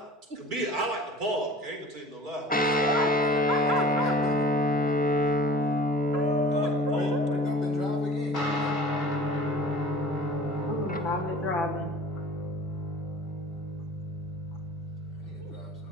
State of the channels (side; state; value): both; normal; correlation 0.44